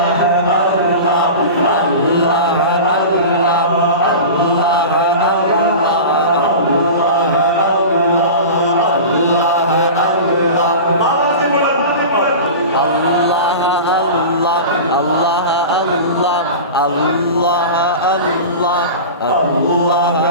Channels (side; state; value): both; inverted; correlation -0.31